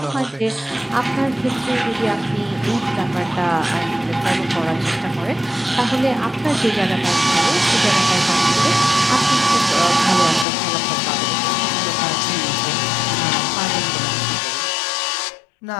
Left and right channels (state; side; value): drops out; right; at 10.5 s